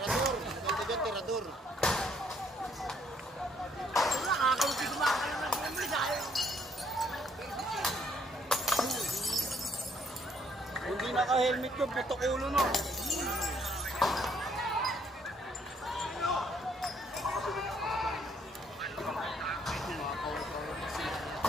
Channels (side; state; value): both; normal; correlation 0.67